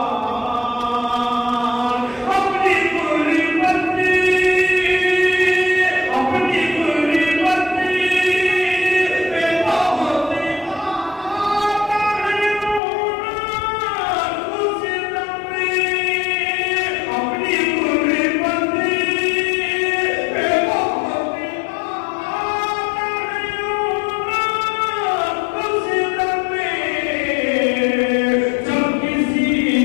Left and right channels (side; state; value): right; drops out; at 12.8 s